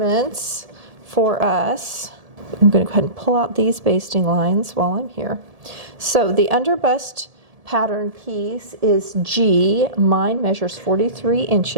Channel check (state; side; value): late; left; 1.7 ms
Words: for us. I'm going to go ahead and pull out these basting lines while I'm here. So the underbust pattern piece is G. Mine measures 43